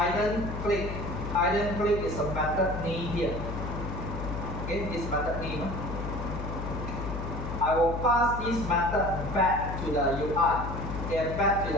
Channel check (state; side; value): noise; left; hum, 5 dB below the sound